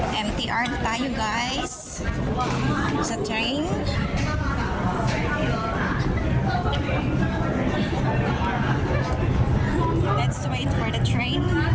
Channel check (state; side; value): identical; both; correlation 1.00